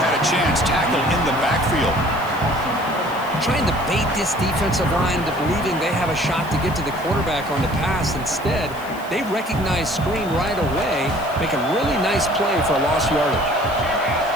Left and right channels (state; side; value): noise; left; hiss, 21 dB below the sound